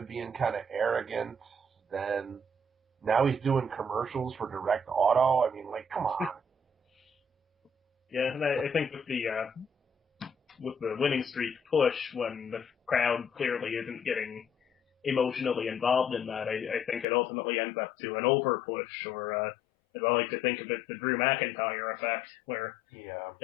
being kind of arrogant. Then now he's doing commercials for Direct Auto. I mean, like, come on. Yeah, and I think with the winning streak push, when the crowd clearly isn't getting emotionally involved in that, I think it ultimately ends up to an over push, or as I like to think of it, the Drew McIntyre effect, where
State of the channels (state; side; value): drops out; right; at 17.1 s